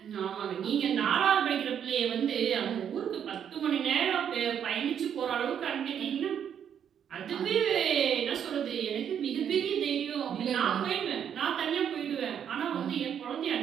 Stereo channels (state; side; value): quieter; left; 8.7 dB